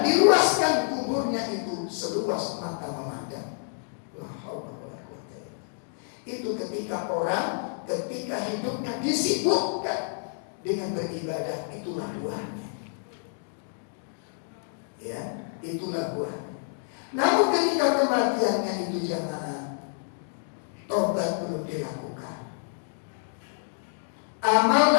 diluaskan kuburnya itu seluas mata memandang. Itu ketika hidupnya disibukkan dengan beribadah, itulah buahnya. Ya, itulah buahnya. Namun ketika kematiannya itu jamaah, tobat belum dilakukan,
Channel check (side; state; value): right; silent; digital silence